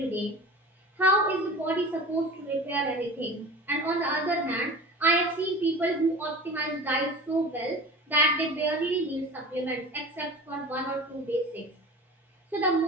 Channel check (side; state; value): both; normal; correlation 0.36